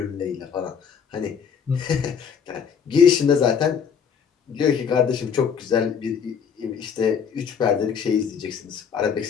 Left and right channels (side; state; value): right; quieter; 7.0 dB